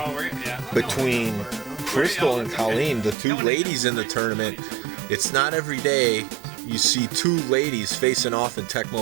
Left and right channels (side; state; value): left; drops out; at 3.2 s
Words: we're yeah. between Crystal and Colleen, the two ladies in the tournament. It's not every day you see two ladies facing off in